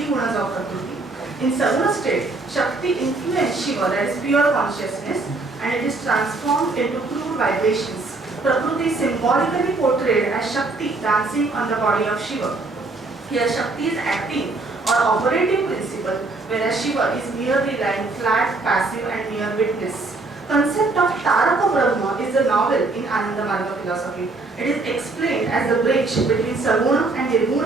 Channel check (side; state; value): left; quieter; 3.4 dB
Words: gunas of Prakriti. In Saguna state, Shakti influences Shiva, that is pure consciousness, and it is transformed into crude vibrations. Prakriti is symbolically portrayed as Shakti dancing on the body of Shiva. Here Shakti is acting or operating principle, whereas Shiva is merely lying flat, passive and mere witness. Concept of Taraka Brahma is a novel in Ananda Marga philosophy. It is explained as the bridge between Saguna and